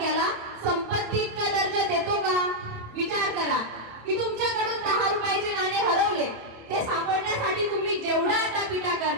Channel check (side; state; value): left; late; 27 ms